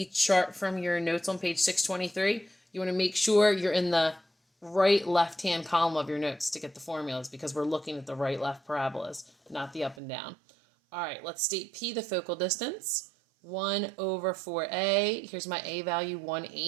chart from your notes on page 623, you want to make sure you're in the right left-hand column of your notes to get the formulas because we're looking at the right-left parabolas, not the up and down. All right, let's state P, the focal distance. 1/4a. Here's my A value,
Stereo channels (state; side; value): drops out; left; at 10.0 s